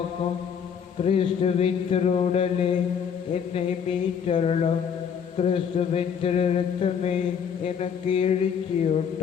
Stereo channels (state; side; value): quieter; right; 7.4 dB